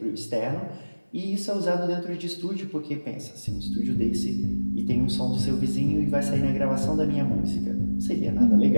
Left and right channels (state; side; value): inverted; both; correlation -1.00